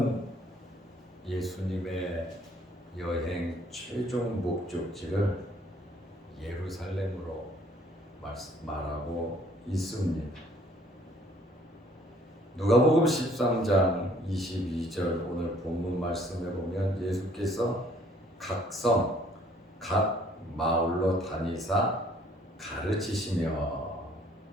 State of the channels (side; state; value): both; normal; correlation 0.60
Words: 예수님의 여행 최종 목적지를 예루살렘으로 말하고 있습니다. 누가복음 13장 22절 오늘 본문 말씀에 보면 예수께서 각 성, 각 마을로 다니사 가르치시며